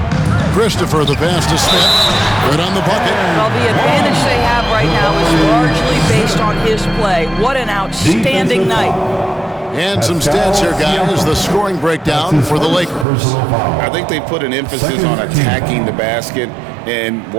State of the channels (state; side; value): drops out; left; at 13.1 s